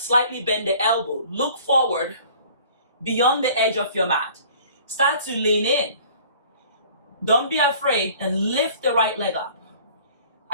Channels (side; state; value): both; inverted; correlation -0.50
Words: bend the elbow, look forward beyond the edge of your mat. Start to lean in. Don't be afraid and lift the right leg up.